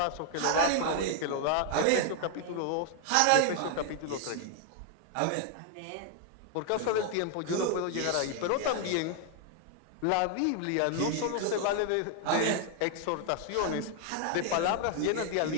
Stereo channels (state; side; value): different; both; correlation 0.00